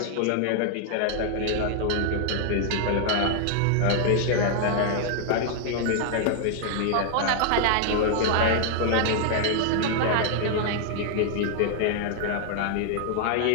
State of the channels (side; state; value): both; different; correlation 0.00